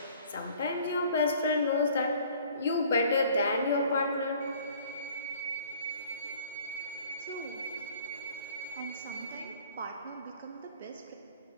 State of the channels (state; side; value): inverted; both; correlation -0.53